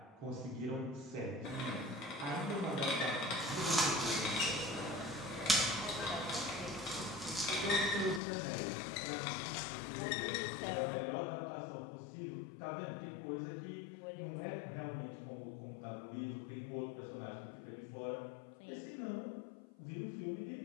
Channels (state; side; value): drops out; right; at 8.2 s